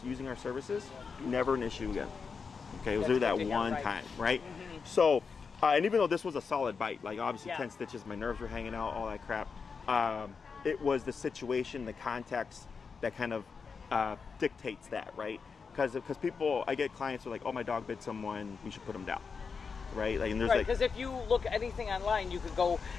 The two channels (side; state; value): right; quieter; 5.4 dB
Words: using our services, never an issue again. Okay, it was really that one time, right? So, and even though this was a solid bite, like obviously 10 stitches, my nerves were hanging out, all that crap, it was the situation, the context that kind of dictates that, right? Because people, I get clients who are like, oh, my dog bit someone, we should put him down, right? Like, and there's because if you look at anything online, you could go